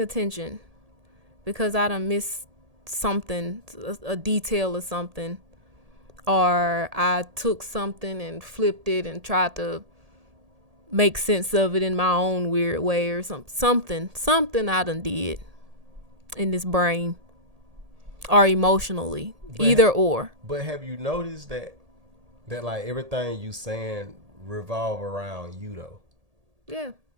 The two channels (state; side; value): late; left; 1.8 ms